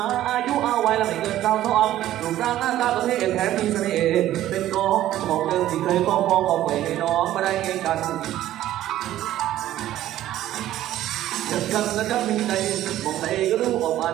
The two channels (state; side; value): quieter; left; 13.4 dB